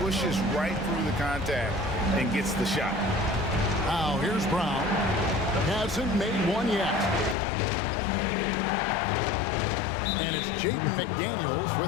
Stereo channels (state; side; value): drops out; right; at 7.4 s